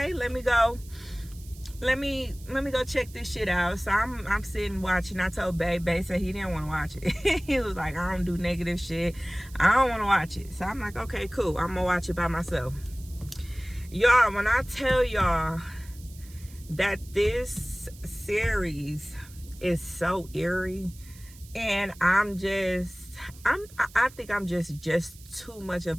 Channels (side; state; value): right; noise; hiss, 22 dB below the sound